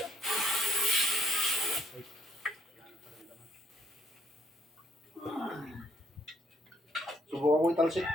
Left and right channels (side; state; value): both; normal; correlation 0.68